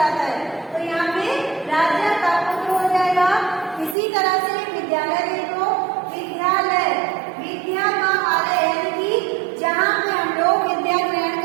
है। तो यहाँ पे राजा का पुत्र हो जाएगा। इसी तरह से विद्यालय देखो, विद्यालय, विद्या का आलय, यानी कि जहाँ पे हम लोग विद्या ग्रहण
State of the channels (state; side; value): drops out; left; at 4.0 s